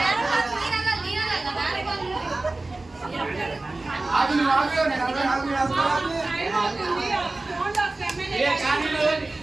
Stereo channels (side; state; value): left; quieter; 3.1 dB